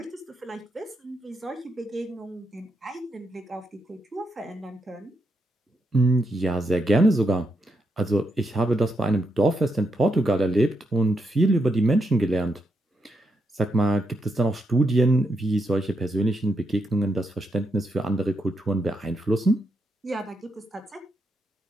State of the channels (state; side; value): normal; both; correlation 0.82